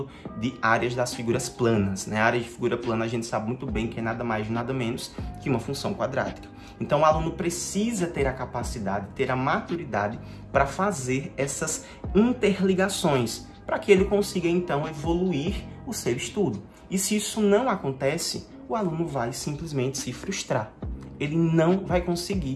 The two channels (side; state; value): both; identical; correlation 1.00